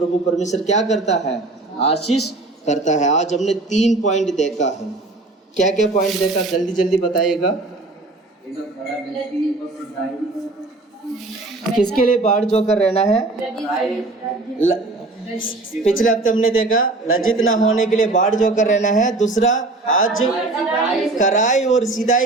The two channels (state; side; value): quieter; left; 3.1 dB